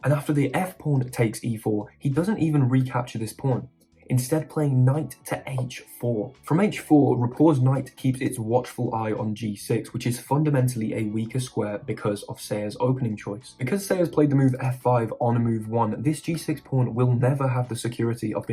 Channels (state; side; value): identical; both; correlation 1.00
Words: And after the f-pawn takes e4, he doesn't even recapture this pawn, instead playing knight to h4. From h4, Rapport's knight keeps its watchful eye on g6, which is fundamentally a weaker square because of Sayers' opening choice. Because Sayers played the move f5 on move 1, this g6 pawn will never have the security of